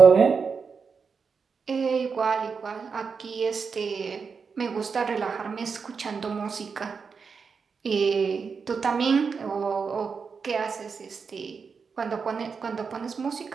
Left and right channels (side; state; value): left; quieter; 5.5 dB